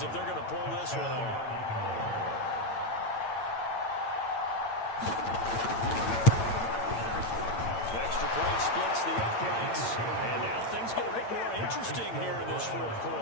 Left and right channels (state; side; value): late; right; 8.9 ms